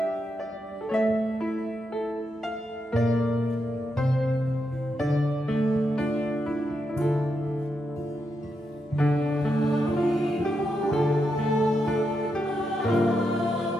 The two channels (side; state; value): both; normal; correlation 0.84